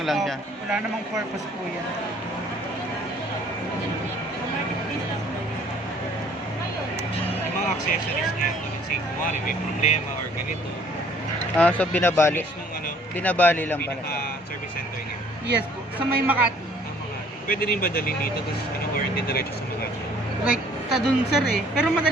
lang siya. Wala namang purpose po yan. Yung mga accessories niya, let's say, kumari may problema or ganito. Ah, so binabali. List nung ano, Binabali lang pala. pinaka-service center niya. Yes po. Sa may Makati. Ang mga, pwede rin ba dalhin dito, tapos warranty diretso sa mga. Like, sa dun, sir eh. Pero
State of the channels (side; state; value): both; normal; correlation 0.58